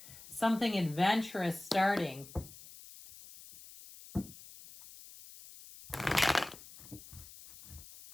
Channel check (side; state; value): left; noise; hiss, 18 dB below the sound